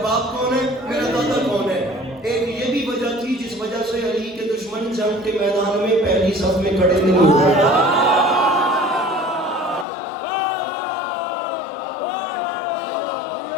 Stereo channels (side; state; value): right; drops out; at 9.9 s